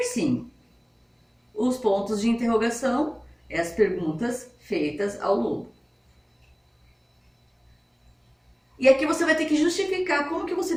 Os pontos de interrogação é as perguntas feitas ao lobo. E aqui você vai ter que justificar como que você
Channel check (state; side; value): identical; both; correlation 1.00